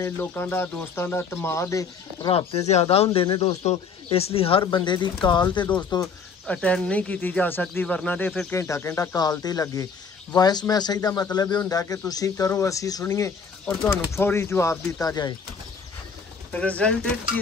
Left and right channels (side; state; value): right; quieter; 5.5 dB